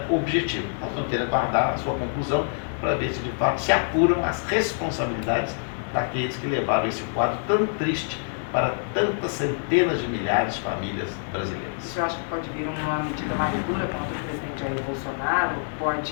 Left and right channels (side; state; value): right; silent; 61 dB below the other